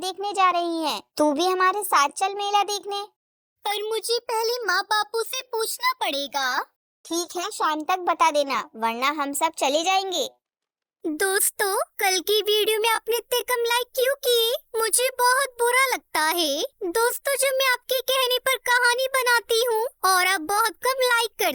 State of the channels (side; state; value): both; identical; correlation 1.00